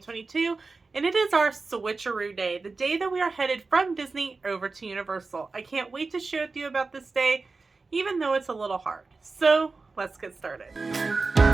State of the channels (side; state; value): left; quieter; 4.0 dB